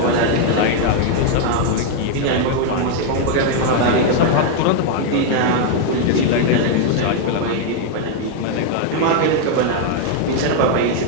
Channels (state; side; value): different; both; correlation 0.00